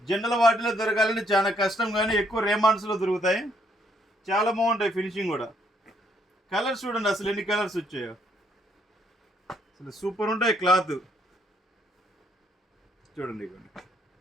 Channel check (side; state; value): both; normal; correlation 0.70